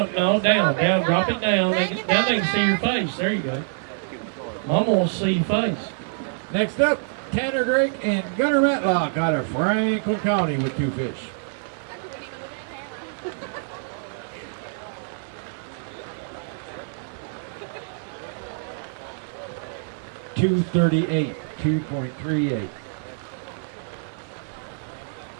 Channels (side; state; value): left; silent; digital silence